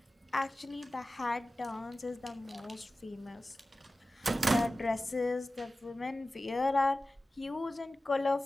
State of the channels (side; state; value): both; normal; correlation 0.95